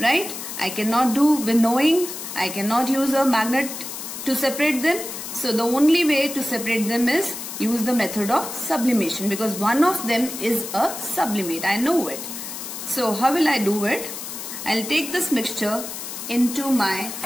I cannot do winnowing. I cannot use a magnet to separate them. So the only way to separate them is use the method of sublimation, because one of them is a sublimate. I know it. So how will I do it? I'll take this mixture into my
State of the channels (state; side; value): noise; left; hiss, 8 dB below the sound